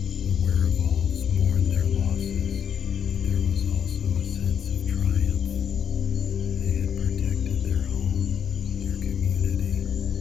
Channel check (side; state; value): right; quieter; 8.0 dB